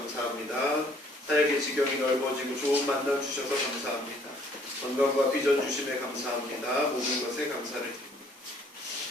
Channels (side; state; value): both; normal; correlation 0.61